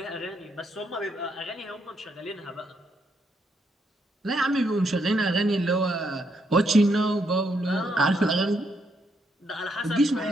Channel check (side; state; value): both; normal; correlation 0.76